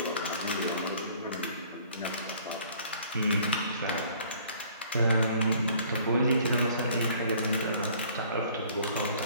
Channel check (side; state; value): both; inverted; correlation -0.55